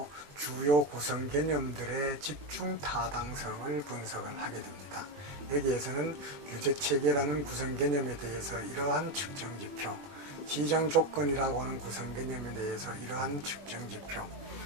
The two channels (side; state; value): left; late; 21 ms